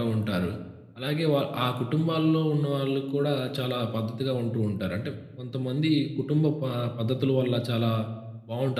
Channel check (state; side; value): identical; both; correlation 1.00